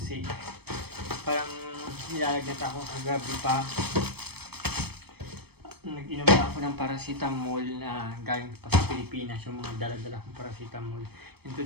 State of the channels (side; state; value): left; late; 0.97 ms